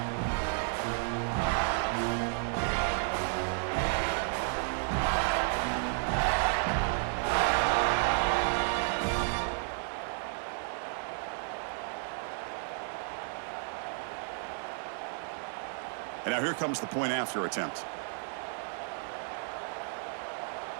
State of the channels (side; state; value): left; silent; 56 dB below the other